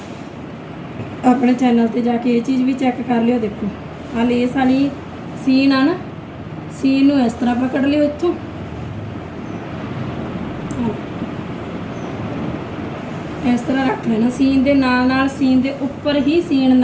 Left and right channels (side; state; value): both; identical; correlation 1.00